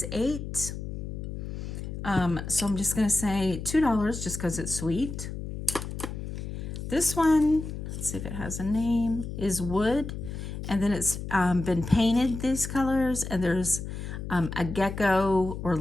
8. So I'm just going to say $2 just because it's sweet. This one, let's see if it has a name, is wood. And then it's been painted these colors. And there's a gecko or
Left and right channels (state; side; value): noise; left; hum, 7 dB below the sound